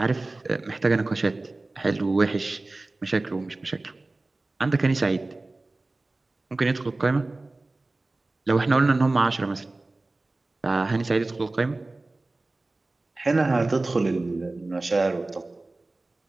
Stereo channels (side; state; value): left; quieter; 3.1 dB